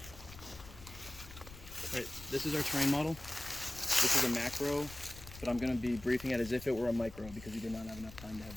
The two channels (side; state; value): left; noise; rumble, 17 dB below the sound